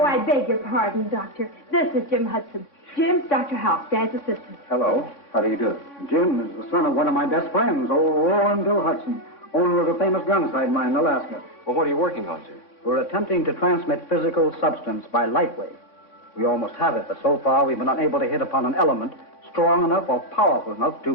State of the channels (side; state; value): right; late; 3.6 ms